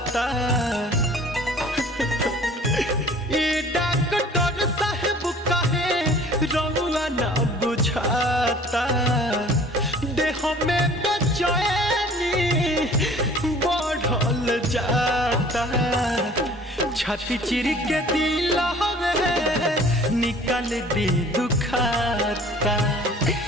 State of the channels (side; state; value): both; normal; correlation 0.50